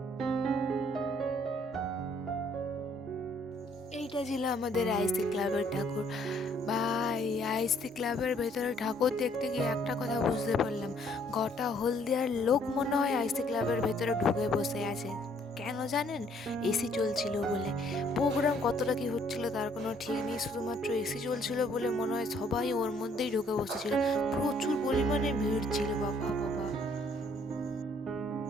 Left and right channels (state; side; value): normal; both; correlation 0.64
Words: এইটা ছিল আমাদের আইসি ক্লাবের ঠাকুর। ভাই, আইসি ক্লাবের ভেতরে ঠাকুর দেখতে গিয়ে একটা কথা বুঝতে পারলাম, গোটা হলদিয়ার লোক মনে হয় আইসি ক্লাবের ভেতরে ঢুকে বসে আছে। কেন জানেন? এসি চলছিল বলে। প্রোগ্রাম কতটা কি হচ্ছিল তার কোনো ঠিক নেই, শুধুমাত্র এসি চলছিল বলে মনে হয় সবাই ওর মধ্যেই ঢুকে বসেছিল। প্রচুর পরিমাণে ভিড় ছিল, বাবা বাবা।